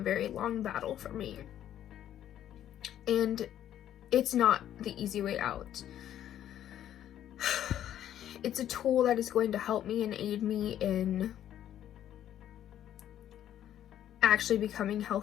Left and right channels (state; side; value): quieter; right; 11.2 dB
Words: long battle for me. And it's not the easy way out. It's a tool that is going to help me and aid me in actually becoming